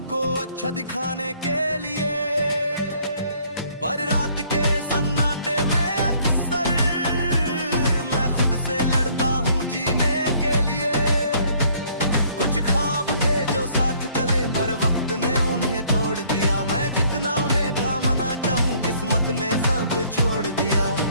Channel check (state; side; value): inverted; both; correlation -0.61